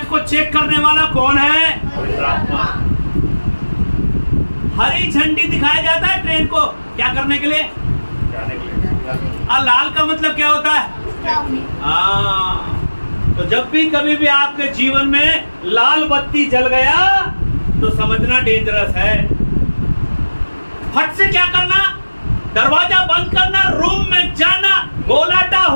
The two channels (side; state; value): both; inverted; correlation -1.00